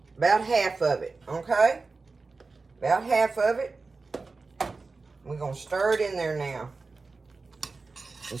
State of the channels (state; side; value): quieter; left; 4.0 dB